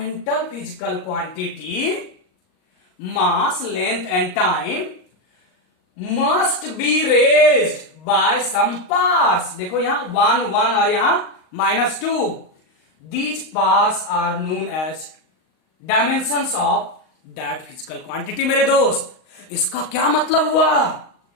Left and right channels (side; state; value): right; late; 38 ms